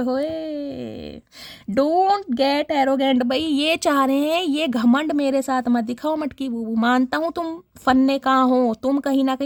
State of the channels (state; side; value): identical; both; correlation 1.00